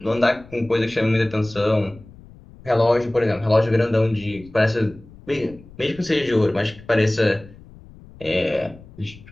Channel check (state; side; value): noise; left; rumble, 21 dB below the sound